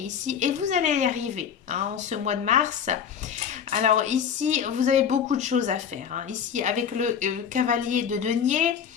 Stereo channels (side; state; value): right; quieter; 7.9 dB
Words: et vous allez y arriver, hein, en ce mois de mars. Alors ici, vous avez beaucoup de choses à faire, hein. Ici, avec le cavalier de denier,